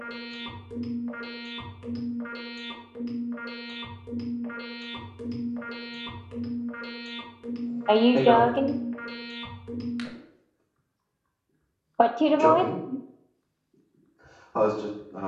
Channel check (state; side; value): identical; both; correlation 1.00